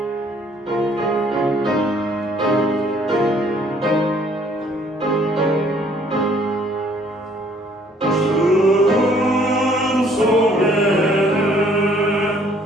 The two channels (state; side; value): normal; both; correlation 0.61